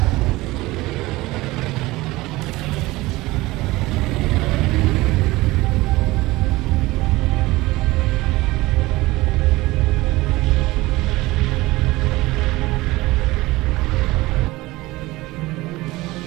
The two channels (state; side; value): quieter; left; 19.8 dB